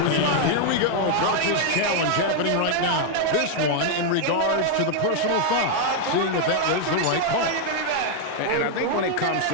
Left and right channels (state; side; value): different; both; correlation 0.00